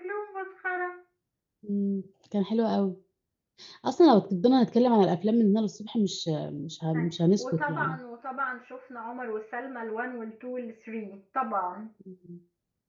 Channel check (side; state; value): both; identical; correlation 1.00